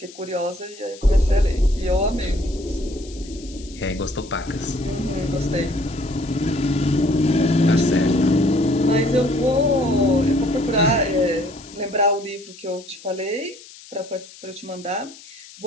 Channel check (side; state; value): left; noise; hiss, 19 dB below the sound